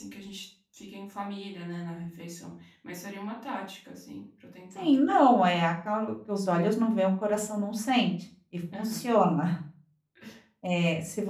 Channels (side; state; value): both; identical; correlation 1.00